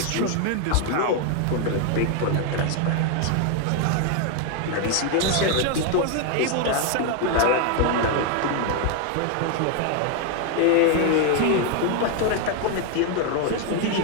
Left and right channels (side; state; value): both; different; correlation 0.01